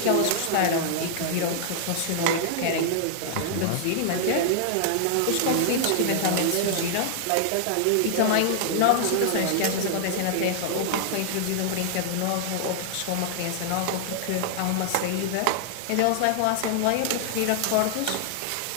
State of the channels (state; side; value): different; both; correlation 0.00